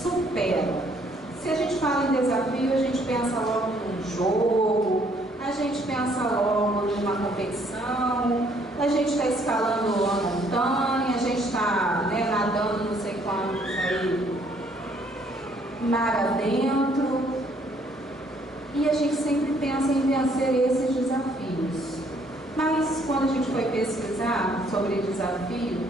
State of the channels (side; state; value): both; normal; correlation 0.65